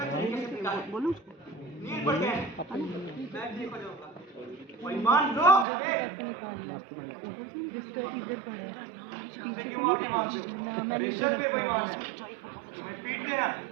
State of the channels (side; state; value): left; drops out; at 5.7 s